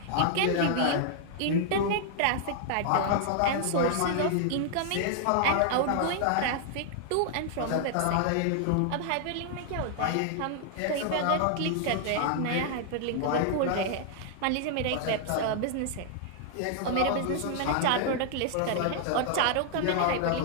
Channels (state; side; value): different; both; correlation -0.01